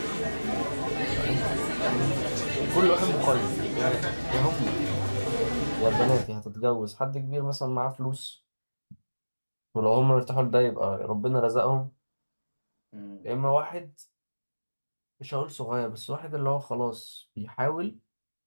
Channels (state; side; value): inverted; both; correlation -1.00